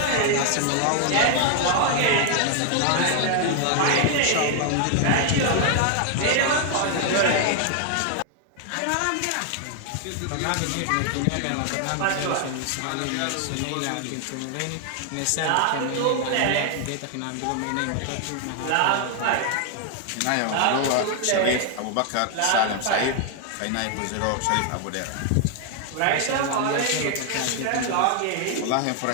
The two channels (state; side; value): different; both; correlation 0.00